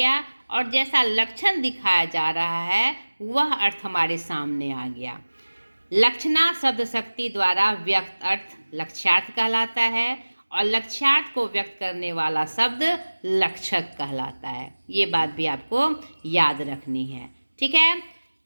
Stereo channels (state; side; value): inverted; both; correlation -1.00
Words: और जैसा लक्षण दिखाया जा रहा है वह अर्थ हमारे सामने आ गया। लक्षणा शब्द शक्ति द्वारा व्यक्त अर्थ लक्ष्यार्थ कहलाता है और लक्ष्यार्थ को व्यक्त करने वाला शब्द लक्षक कहलाता है। ये बात भी आपको याद रखनी है। ठीक है,